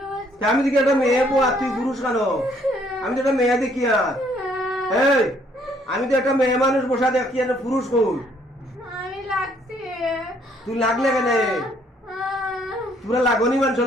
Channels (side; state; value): both; normal; correlation 0.66